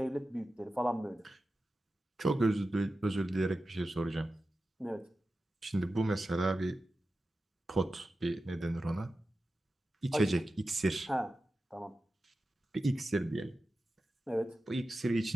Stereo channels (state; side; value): normal; both; correlation 0.93